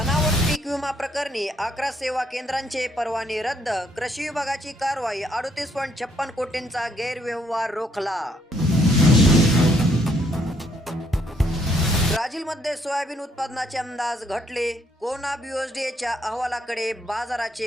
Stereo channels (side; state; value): both; normal; correlation 0.70